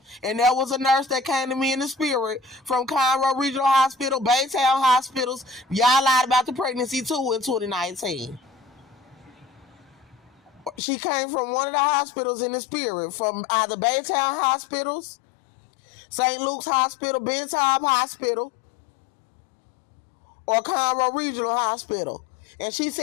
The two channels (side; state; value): right; drops out; at 10.8 s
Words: And there was a nurse that came to me in the spirit from Conroe Regional Hospital, Baytown Hospitals. Y'all lied about the pregnancy too in 2019. She came from one of the hospitals in the spirit, from either Baytown Hospitals, St. Luke's Hospital, Bentham Hospital, or Conroe Regional Hospital. And she